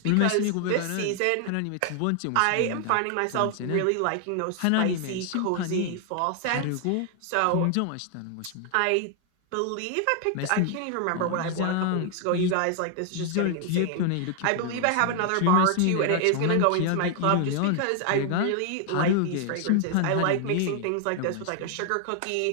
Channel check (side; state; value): both; different; correlation 0.00